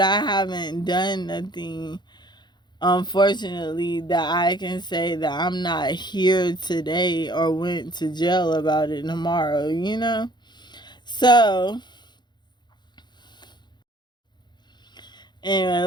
haven't done nothing, unfortunately, that I can say that I'm not here today or went to jail about it tomorrow, you know? So, anyway,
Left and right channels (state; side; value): late; right; 0.21 ms